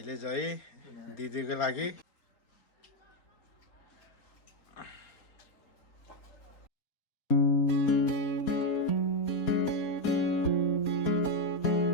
चाहिँ दिदीको लागि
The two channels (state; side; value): late; right; 4.2 ms